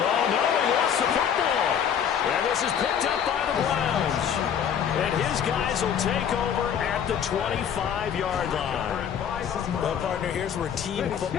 no, he lost the football. And this is picked up by the Browns. And his guys will take over at the 25-yard line. Well, partner, here's where team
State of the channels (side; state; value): right; quieter; 8.4 dB